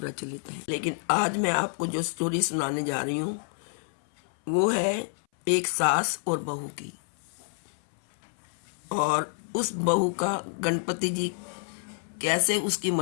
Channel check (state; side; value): silent; right; 59 dB below the other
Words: हैं, लेकिन आज मैं आपको जो स्टोरी सुनाने जा रही हूँ वो है एक सास और बहू की। और उस बहू का गणपति जी कैसे उसकी